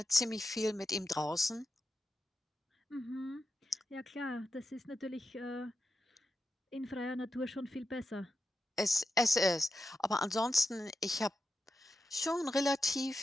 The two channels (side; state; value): both; normal; correlation 0.89